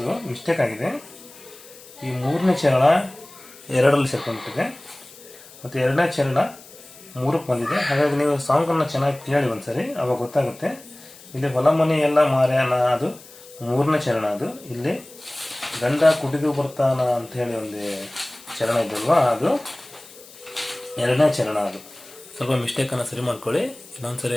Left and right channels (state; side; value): noise; left; hiss, 21 dB below the sound